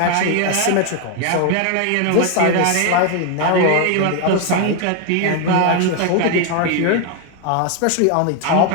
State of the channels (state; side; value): different; both; correlation 0.01